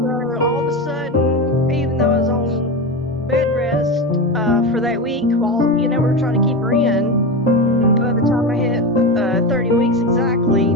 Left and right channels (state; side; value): normal; both; correlation 0.20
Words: all of a sudden, even though I was on bed rest for that week, while we were trying to keep her in, by the time I hit 30 weeks exactly,